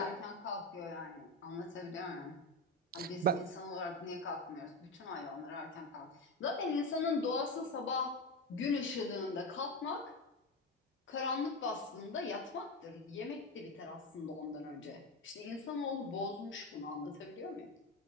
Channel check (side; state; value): both; normal; correlation 0.17